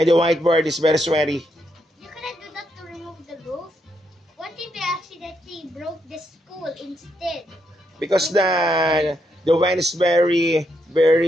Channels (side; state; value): both; normal; correlation 0.79